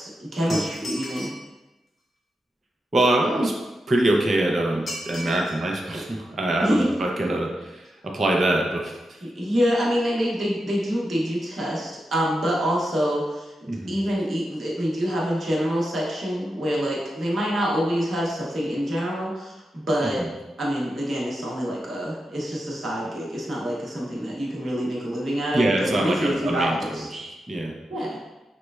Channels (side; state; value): both; normal; correlation 0.88